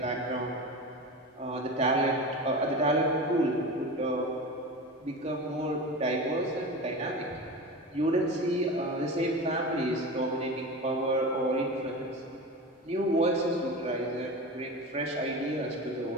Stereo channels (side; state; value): both; normal; correlation 0.28